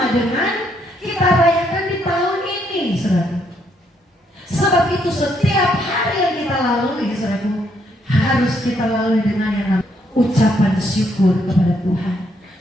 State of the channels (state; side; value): normal; both; correlation 0.73